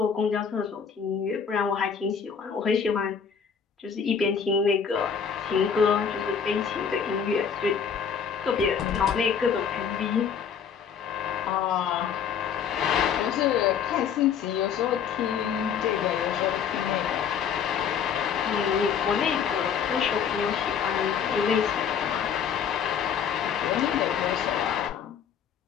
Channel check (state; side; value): quieter; right; 7.2 dB